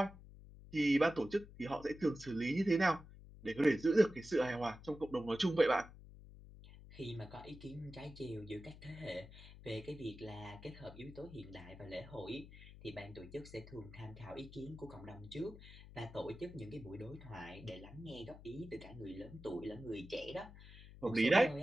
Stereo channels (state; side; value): noise; left; hum, 17 dB below the sound